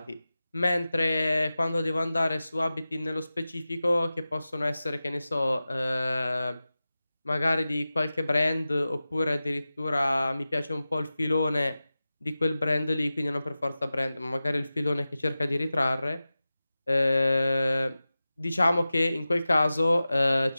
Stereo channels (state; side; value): inverted; both; correlation -0.95